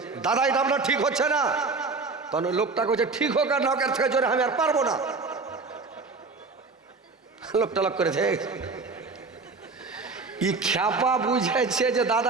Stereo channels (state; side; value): quieter; left; 4.1 dB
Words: দাদা এটা আপনার ঠিক হচ্ছে না। তখন ওই লোকটা কইছে, ঠিক হোক আর নকের থেকে জোরে আমি আর পারবো না। লোকটা লক করেছে, ই খ্যাপা বুঝাইছে যে